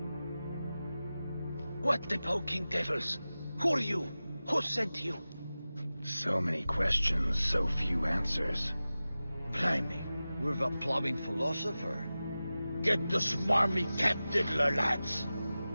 What the poking devils? Who are you? Who sent you? So many questions, so few answers. Blimey, we're the plumbing philosopher. Get the smarmy cat diddler, lads.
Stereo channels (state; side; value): inverted; both; correlation -0.96